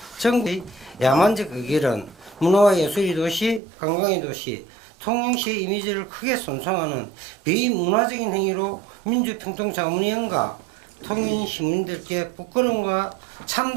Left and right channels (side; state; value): left; drops out; at 3.6 s